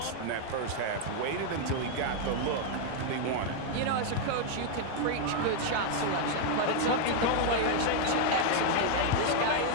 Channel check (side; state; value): both; different; correlation 0.00